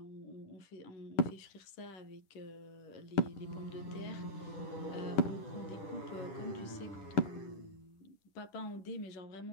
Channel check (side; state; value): right; late; 10 ms